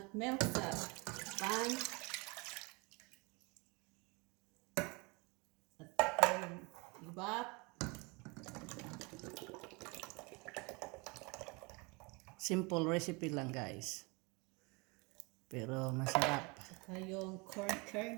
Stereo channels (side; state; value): left; quieter; 28.1 dB